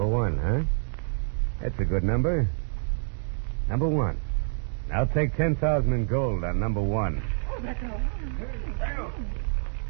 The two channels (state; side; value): silent; left; digital silence